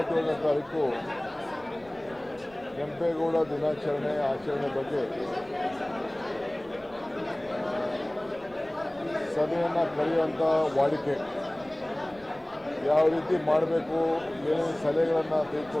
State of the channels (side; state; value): left; noise; rumble, 26 dB below the sound